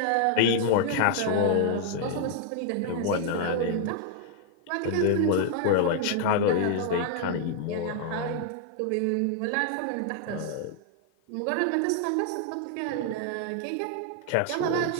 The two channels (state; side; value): different; both; correlation 0.00